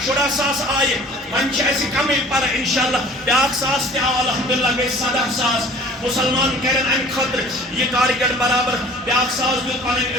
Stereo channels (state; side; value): normal; both; correlation 0.48